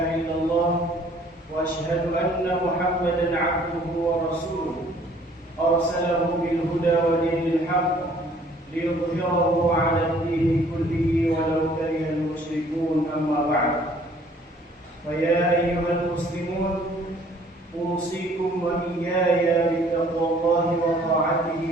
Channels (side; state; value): both; normal; correlation 0.57